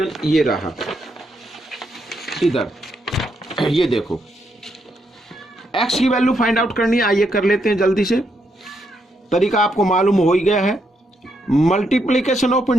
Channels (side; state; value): both; normal; correlation 0.78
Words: ये रहा, इधर ये देखो x की वैल्यू फाइंड आउट करनी है, आइए कर लेते हैं जल्दी से। तरीका आपको मालूम हो ही गया है, मल्टीप्लीकेशन ऑफ